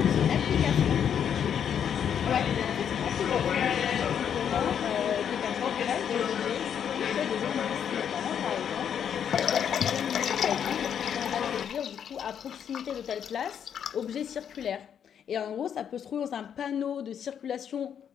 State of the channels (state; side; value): quieter; right; 8.4 dB